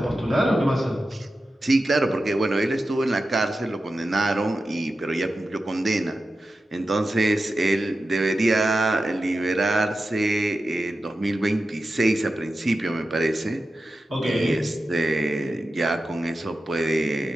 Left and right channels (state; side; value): normal; both; correlation 0.92